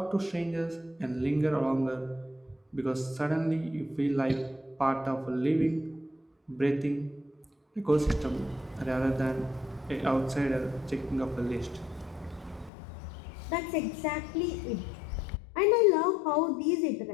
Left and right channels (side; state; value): right; drops out; at 12.7 s